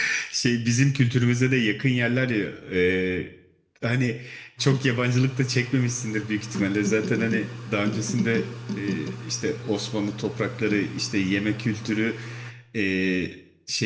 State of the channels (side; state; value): both; identical; correlation 1.00